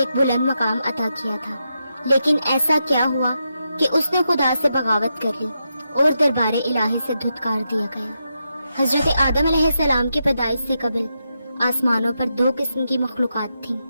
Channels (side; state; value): both; inverted; correlation -0.85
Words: بلند مقام عطا کیا تھا، لیکن ایسا کیا ہوا کہ اس نے خدا سے بغاوت کر لی اور دربار الہی سے دھتکار دیا گیا۔ حضرت آدم علیہ السلام کی پیدائش سے قبل آسمانوں پر دو قسم کی مخلوقات تھیں،